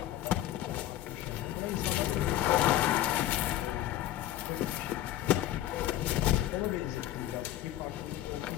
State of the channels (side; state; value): right; quieter; 13.3 dB